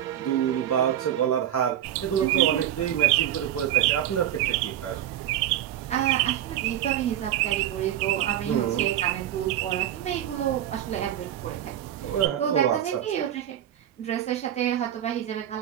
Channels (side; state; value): left; quieter; 11.4 dB